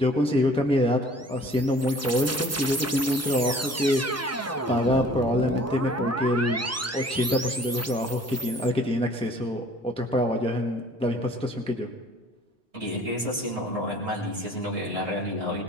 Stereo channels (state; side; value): normal; both; correlation 0.52